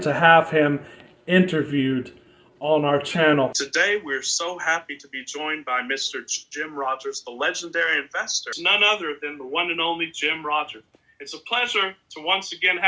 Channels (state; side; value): identical; both; correlation 1.00